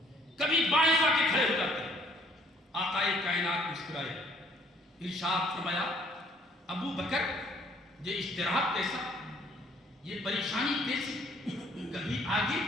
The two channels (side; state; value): both; normal; correlation 0.61